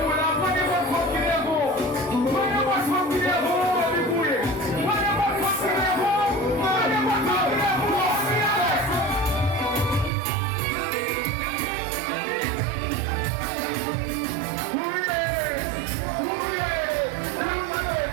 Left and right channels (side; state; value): left; drops out; at 10.1 s